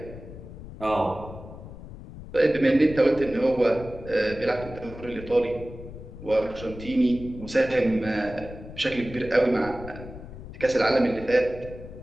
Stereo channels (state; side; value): noise; left; rumble, 14 dB below the sound